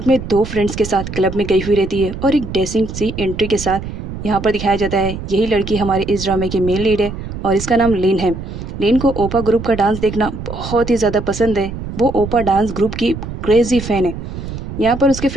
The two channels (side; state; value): right; noise; rumble, 8 dB below the sound